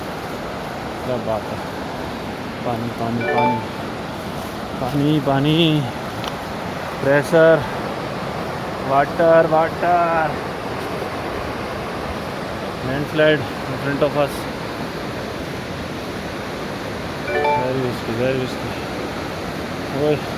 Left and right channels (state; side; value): identical; both; correlation 1.00